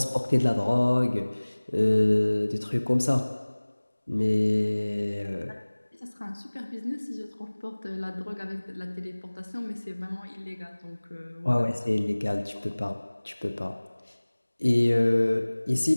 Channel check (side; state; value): both; inverted; correlation -1.00